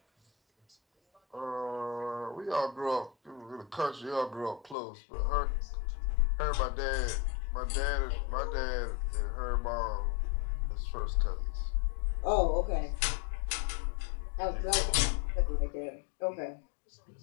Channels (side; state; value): right; drops out; at 4.8 s